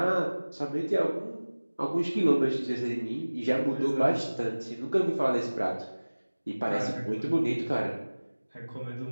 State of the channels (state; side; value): inverted; both; correlation -1.00